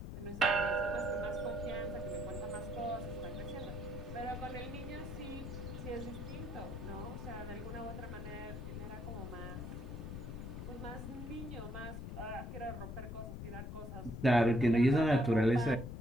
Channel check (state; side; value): noise; left; rumble, 7 dB below the sound